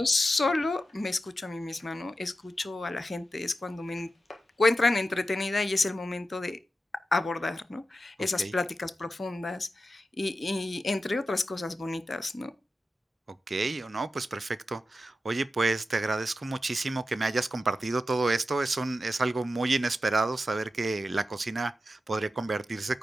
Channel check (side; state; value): both; normal; correlation 0.91